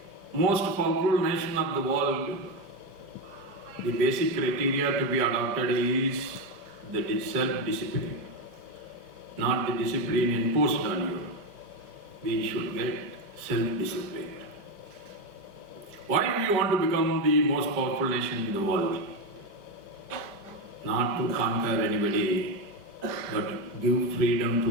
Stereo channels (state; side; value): late; left; 5.0 ms